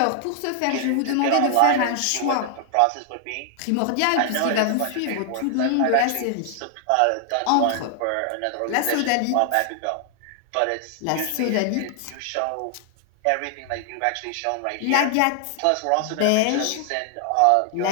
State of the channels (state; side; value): different; both; correlation 0.00